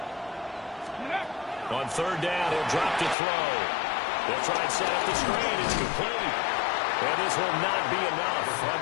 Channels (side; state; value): right; drops out; at 3.2 s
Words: On 3rd down, he'll drop to throw. They'll try and set up the screen. It's complete. And this will not be enough. On